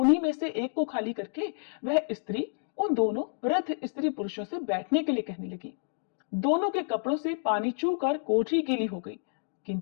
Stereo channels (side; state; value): right; silent; digital silence